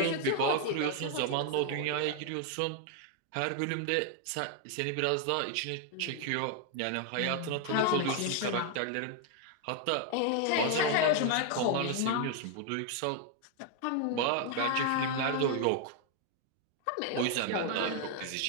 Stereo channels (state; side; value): different; both; correlation 0.00